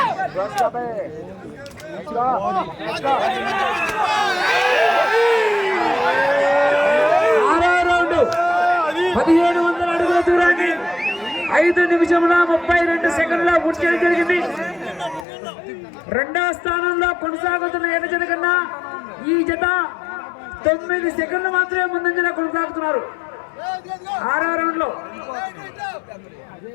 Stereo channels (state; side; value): drops out; right; at 15.2 s